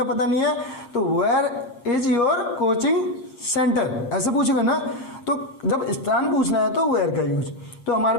पता नहीं है, तो where is your coaching centre, ऐसे पूछेगा ना। तो जब स्थान पूछना है तो वेयर का यूज। तो हमारे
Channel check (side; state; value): right; late; 7.5 ms